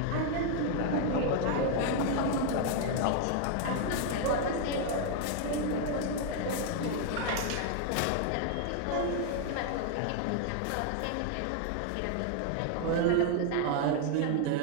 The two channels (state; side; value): different; both; correlation 0.00